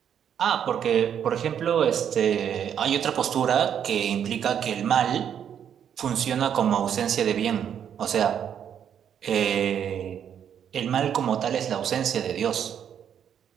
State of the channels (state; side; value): quieter; left; 8.8 dB